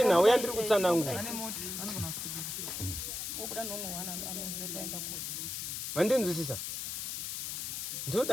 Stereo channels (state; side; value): noise; left; hiss, 4 dB below the sound